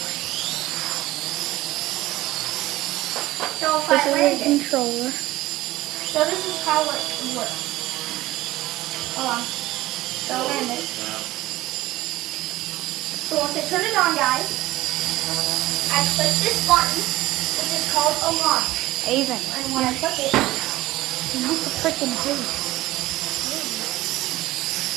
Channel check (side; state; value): left; quieter; 17.2 dB